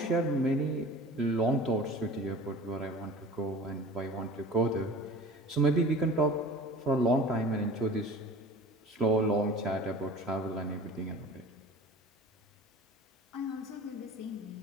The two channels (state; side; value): normal; both; correlation 0.41